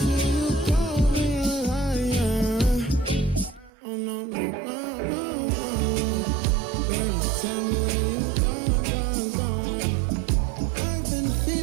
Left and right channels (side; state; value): left; drops out; at 3.7 s